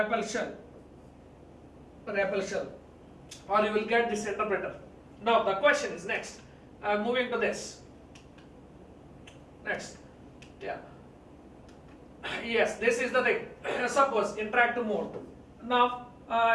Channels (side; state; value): both; identical; correlation 1.00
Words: shell, or you will get this interpreter. Now the question is next. Moving to this. Next, yeah. Yes, this is the thing. Suppose interactive mode. Now